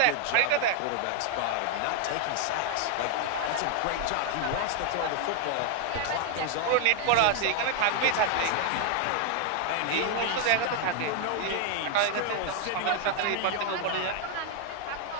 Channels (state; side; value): different; both; correlation 0.00